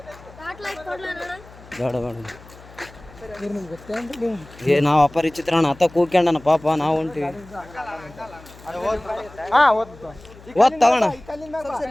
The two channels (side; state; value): left; noise; hum, 21 dB below the sound